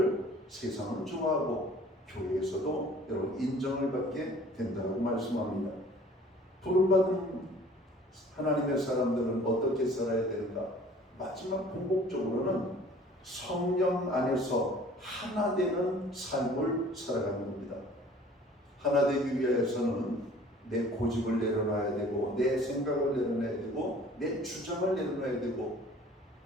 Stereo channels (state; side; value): normal; both; correlation 0.50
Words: 세상은 좋아하고 교회에서도 여러분 인정을 받게 된다고 말씀합니다. 부름받은 하나님의 사람들은 어떻게 살아야 되는가? 마지막 궁극적으로는 성령 안에서 하나 되는 삶을 살아가는 겁니다. 하나 되기 위해서는 내 고집을 내려놔야 되고 내 생각을 내려놔야 되고 내 주장을 내려놔야 되고